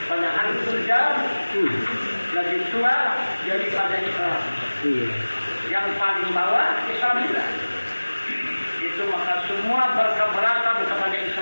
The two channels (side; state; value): both; inverted; correlation -1.00